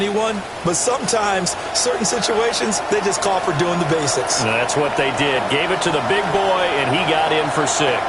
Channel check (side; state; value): both; identical; correlation 1.00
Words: but sometimes certain situations, they just call for doing the basics. That's what they did. Gave it to the big boy, and he got in for 6.